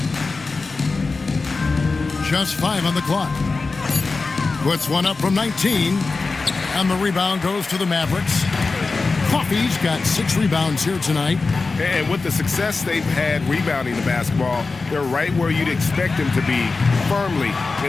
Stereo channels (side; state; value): right; quieter; 4.0 dB